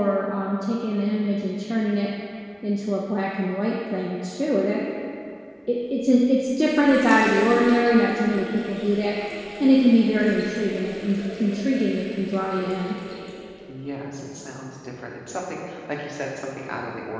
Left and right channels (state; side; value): identical; both; correlation 1.00